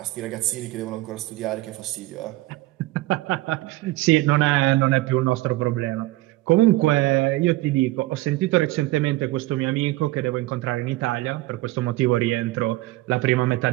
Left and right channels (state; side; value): quieter; left; 18.5 dB